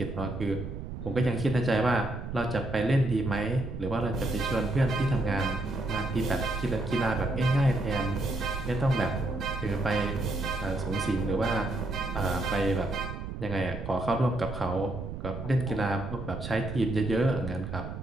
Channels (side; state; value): right; noise; rumble, 8 dB below the sound